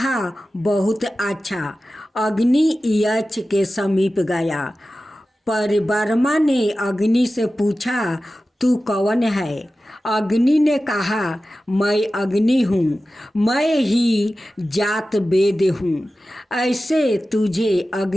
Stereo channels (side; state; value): both; normal; correlation 0.95